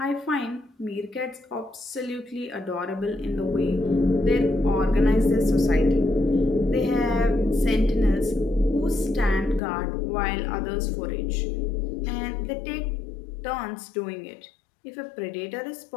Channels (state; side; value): drops out; right; at 9.6 s